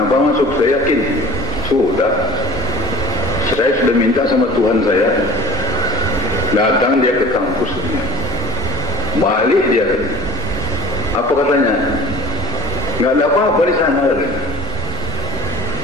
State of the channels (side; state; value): both; normal; correlation 0.42